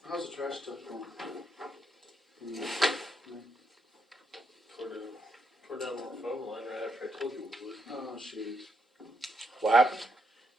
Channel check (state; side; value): normal; both; correlation 0.79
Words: How's the trash stuff going? Tore down our phone line right after I told you we would. Oh, shoot. What happened?